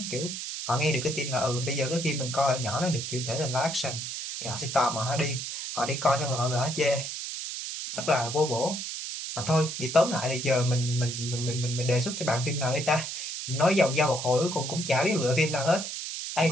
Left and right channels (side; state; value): right; noise; hiss, 6 dB below the sound